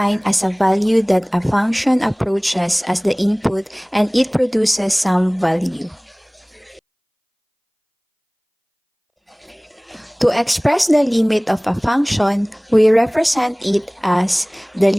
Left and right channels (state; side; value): identical; both; correlation 1.00